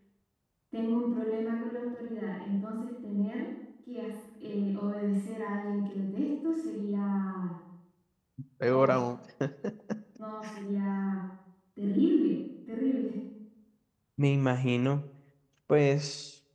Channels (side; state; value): both; identical; correlation 1.00